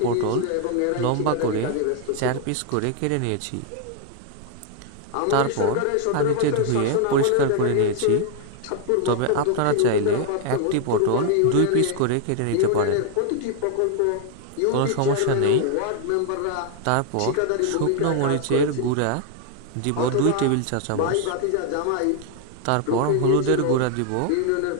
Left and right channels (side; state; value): both; different; correlation 0.00